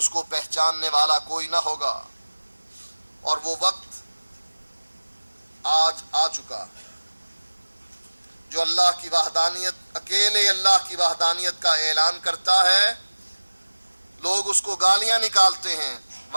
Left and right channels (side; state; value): both; inverted; correlation -1.00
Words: کو پہچاننے والا کوئی نہ ہوگا، اور وہ وقت آج آ چکا جو اللہ کی وحدانیت، اکیلے اللہ کی وحدانیت کا اعلان کرتا ہے۔ لوگ اس کو گالیاں نکالتے ہیں،